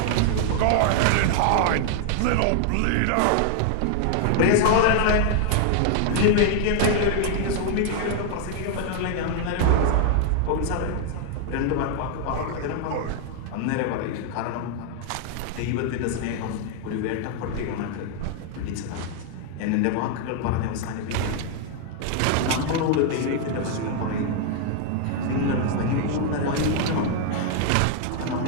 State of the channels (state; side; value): different; both; correlation 0.00